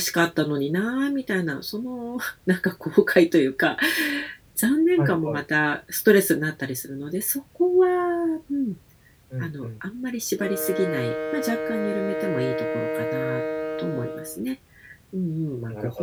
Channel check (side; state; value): both; identical; correlation 1.00